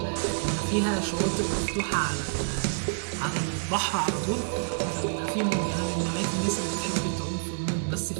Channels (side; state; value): left; silent; digital silence